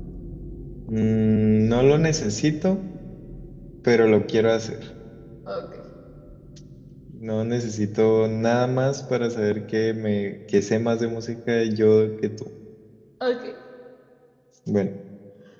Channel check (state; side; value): identical; both; correlation 1.00